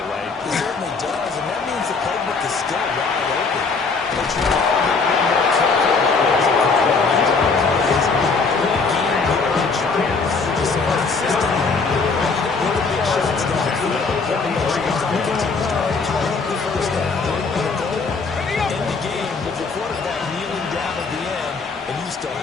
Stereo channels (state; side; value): quieter; right; 4.5 dB